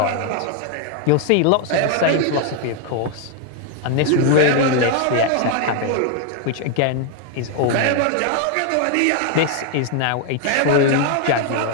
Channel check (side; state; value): both; different; correlation 0.00